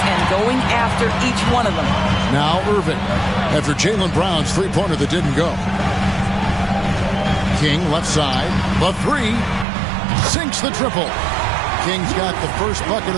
and going after each one of them. Now Irving, after Jaylen Brown's three-pointer that didn't go. King left side, the three, sinks the triple. King's got the first bucket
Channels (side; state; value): left; drops out; at 9.7 s